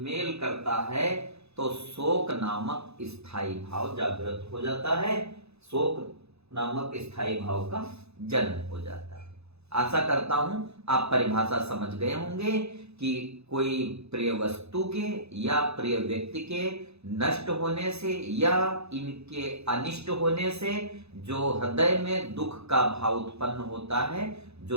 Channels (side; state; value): left; late; 0.79 ms